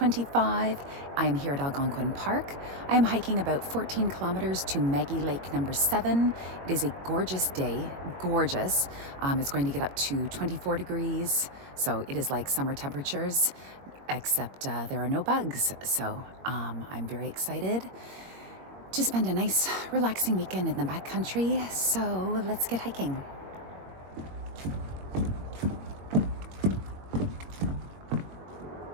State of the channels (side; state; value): left; late; 21 ms